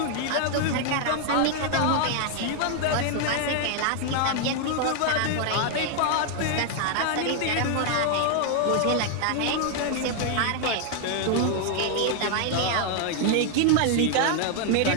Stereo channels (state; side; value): different; both; correlation 0.00